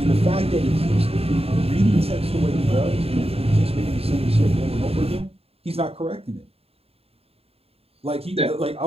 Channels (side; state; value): left; late; 0.29 ms